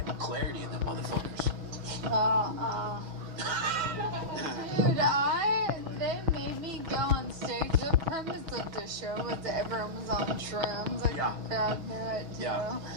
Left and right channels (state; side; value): late; left; 6.2 ms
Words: clarity in them motherfuckers. Dude, they made me go on stage. The premise of the show was that everyone was on shrooms. Like, the crowd knew it, too. Yeah,